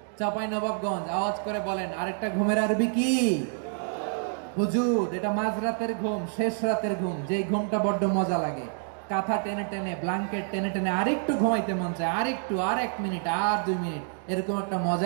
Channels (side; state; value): left; silent; 59 dB below the other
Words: চাঁপাইনবাবগঞ্জ আওয়াজ করে বলেন, আরেকটা ঘুমের আরবি কি? হুজুদ। এটা মাঝরাতের ঘুম, শেষ রাতের ঘুম, যেই ঘুমটা বড্ড মজা লাগে। কাঁথা টেনে টেনে, ব্ল্যাঙ্কেট টেনে টেনে আরেকটু ঘুমাইতে মন চায়, আরেকটু, আর 1 মিনিট, আর 2 মিনিট, এরকম একটা